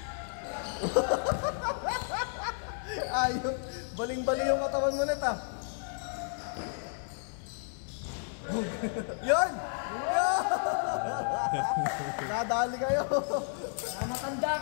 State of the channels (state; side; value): silent; right; 56 dB below the other